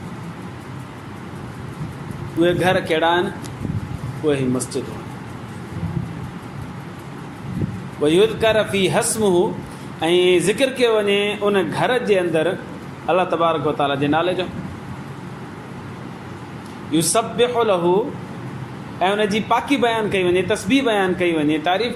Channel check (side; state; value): both; identical; correlation 1.00